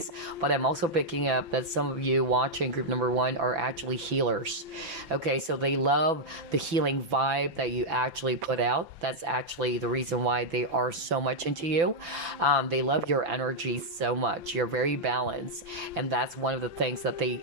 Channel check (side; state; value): left; late; 6.0 ms